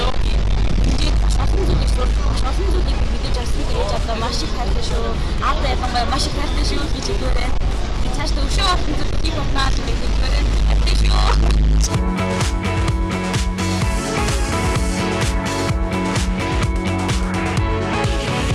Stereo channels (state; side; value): identical; both; correlation 1.00